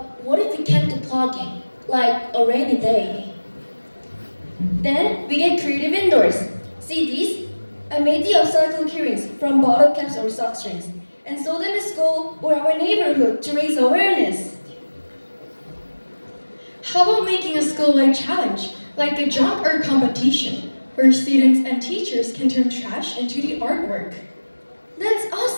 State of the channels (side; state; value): both; inverted; correlation -1.00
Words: what if we can't do plugging? Like a rainy day? Then we get creative indoors. See these? I made the upcycle keyrings from bottle caps or sock strings and sold them in school or our neighborhood to raise awareness. How about making a school-wide challenge, like a junk art competition, where students and teachers can turn trash into the artwork? That's